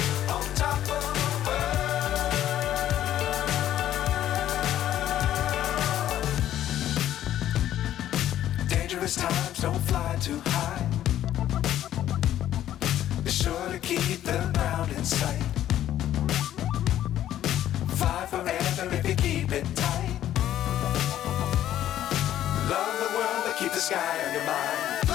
Times don't fly too high. Be sure to keep the ground in sight. Fly forever if you keep it tight. Love the world but keep the sky on your mind.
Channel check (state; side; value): quieter; right; 12.0 dB